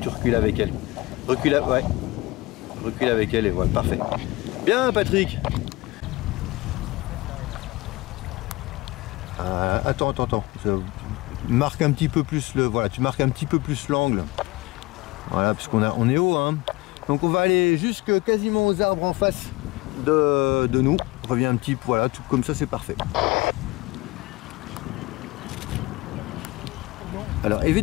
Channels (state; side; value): quieter; right; 21.4 dB